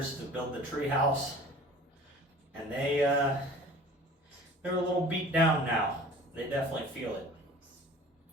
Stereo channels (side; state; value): both; normal; correlation 0.44